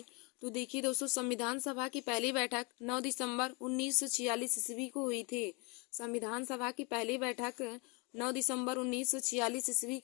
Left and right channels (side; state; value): right; quieter; 29.2 dB